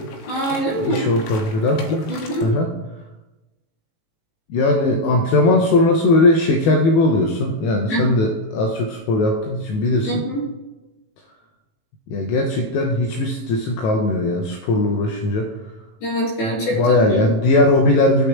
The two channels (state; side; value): late; right; 18 ms